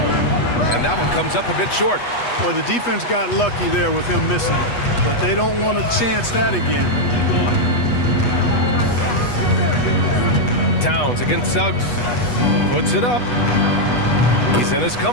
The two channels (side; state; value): right; late; 8.2 ms